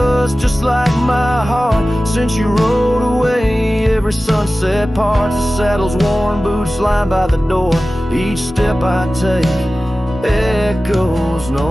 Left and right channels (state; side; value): normal; both; correlation 0.96